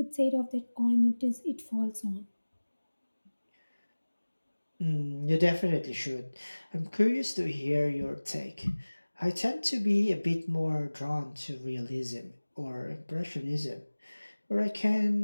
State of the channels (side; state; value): both; inverted; correlation -1.00